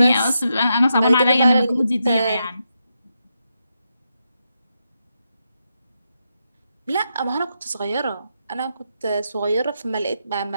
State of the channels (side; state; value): both; inverted; correlation -0.84